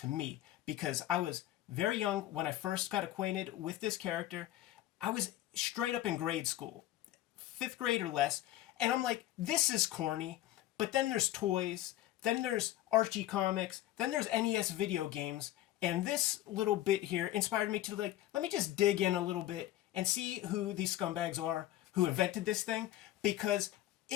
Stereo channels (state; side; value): quieter; right; 14.3 dB